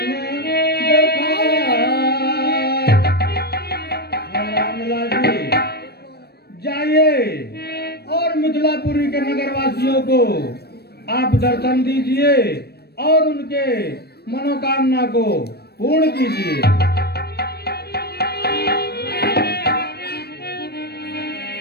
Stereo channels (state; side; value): late; right; 0.47 ms